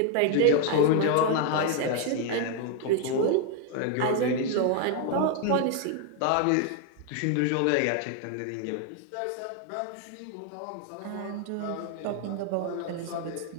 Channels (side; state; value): both; different; correlation 0.00